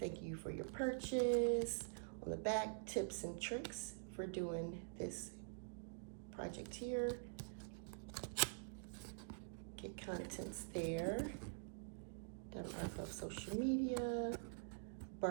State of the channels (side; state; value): left; silent; digital silence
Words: you for your purchase. On the back, tips and tricks for doing this project here. Get contents there. Diamond Art Club social media.